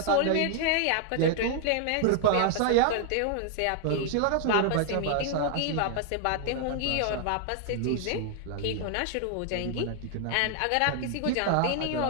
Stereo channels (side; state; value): both; different; correlation 0.00